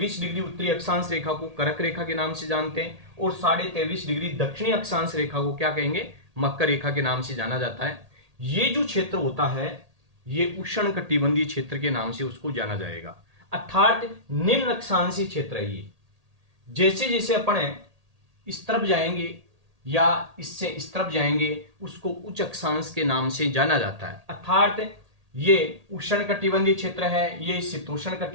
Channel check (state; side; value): late; left; 1.8 ms